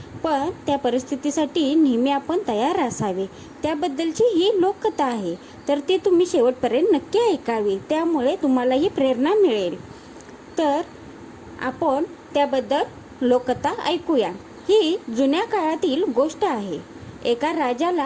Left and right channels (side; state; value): both; identical; correlation 1.00